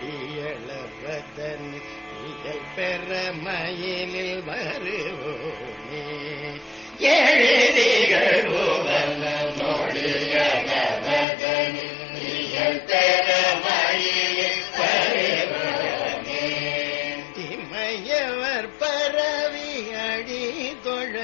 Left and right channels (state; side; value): drops out; right; at 11.2 s